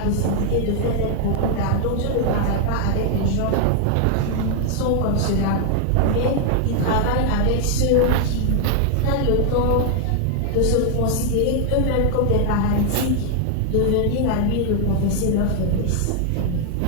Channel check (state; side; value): different; both; correlation 0.00